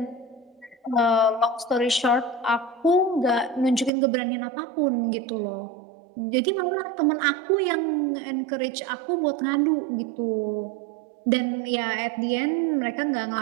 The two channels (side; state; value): left; drops out; at 3.9 s